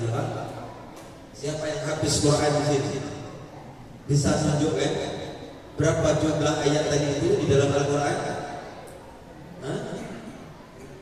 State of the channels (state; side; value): identical; both; correlation 1.00